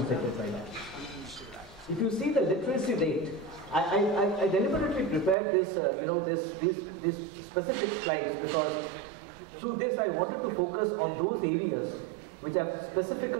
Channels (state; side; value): drops out; left; at 5.4 s